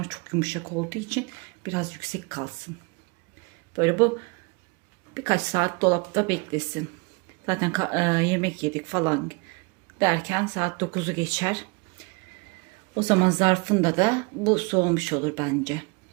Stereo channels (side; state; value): left; quieter; 29.8 dB